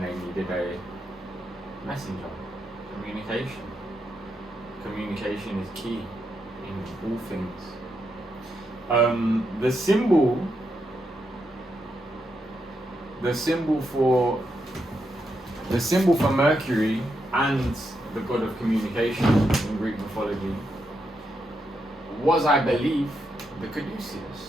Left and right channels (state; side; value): normal; both; correlation 0.82